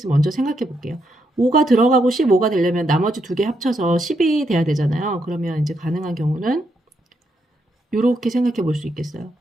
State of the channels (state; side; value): normal; both; correlation 0.79